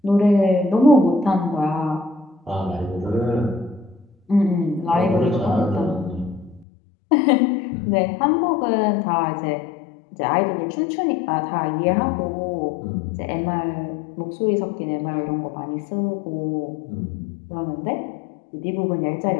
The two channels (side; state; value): right; drops out; at 6.7 s